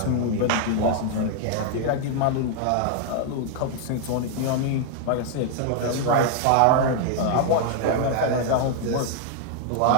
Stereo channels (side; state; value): both; different; correlation 0.00